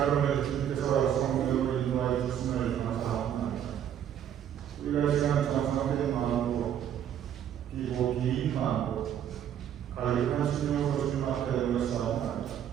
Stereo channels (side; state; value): left; quieter; 9.8 dB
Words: 주님께서 성령으로 인도하여 주심을 감사합니다. 우리가 이 시간 정성된 마음으로 비고 긴 마음으로 가득한 신령으로 주님 앞에 모였사옵나이다.